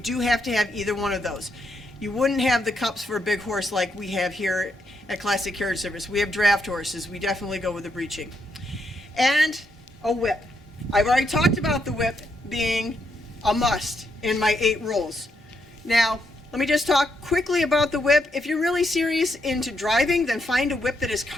have to have either one of those. You wouldn't have the cups for a big horse like we have here at Classic Carriage Service. We have draft horses. We definitely go with the breeching. And a whip. I've already talked about the whip being a must in my 8 rules. Now, let me just talk quickly about the whip. If you're really serious into driving, then find a whip that is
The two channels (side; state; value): both; normal; correlation 0.79